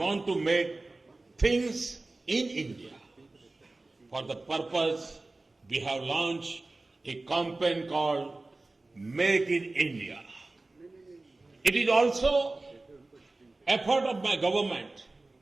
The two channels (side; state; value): left; quieter; 3.1 dB